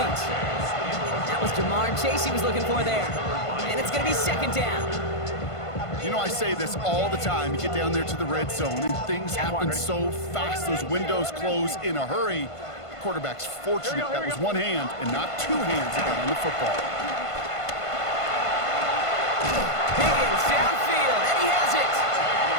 That was Jamar Chase he was looking for there. And it's going to be second down. You know, I say this all the time. You get down there to the red zone, and things happen so fast. Those windows close in a hurry. The quarterback's fortunate that was one hand and not two hands that got on the football. Higgins downfield, and he has it.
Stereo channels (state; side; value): late; right; 1.5 ms